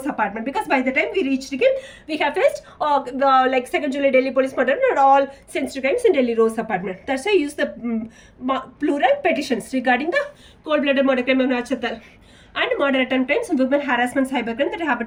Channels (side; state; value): both; identical; correlation 1.00